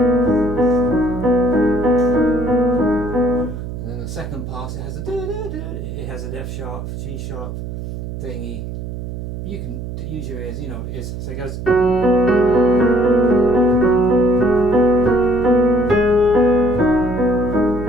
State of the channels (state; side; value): noise; right; hum, 7 dB below the sound